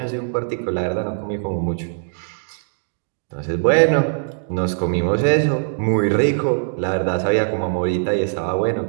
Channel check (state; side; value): silent; left; digital silence